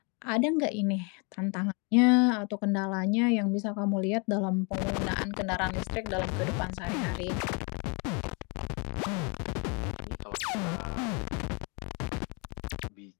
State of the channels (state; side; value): quieter; right; 33.5 dB